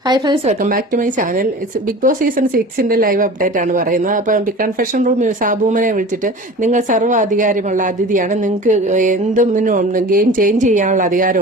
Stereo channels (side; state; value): both; normal; correlation 0.38